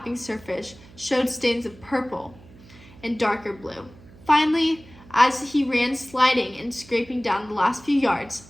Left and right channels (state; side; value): noise; right; hum, 22 dB below the sound